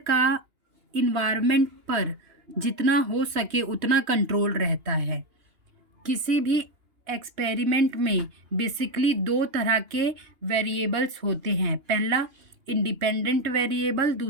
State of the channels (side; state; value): left; late; 2.8 ms